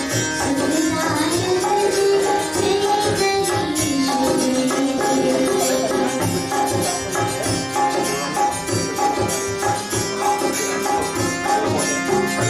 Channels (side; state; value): both; identical; correlation 1.00